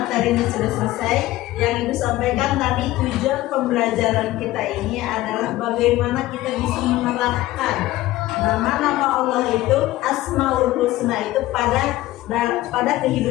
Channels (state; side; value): quieter; right; 16.6 dB